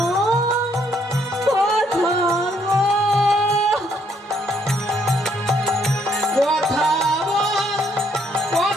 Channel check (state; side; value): normal; both; correlation 0.70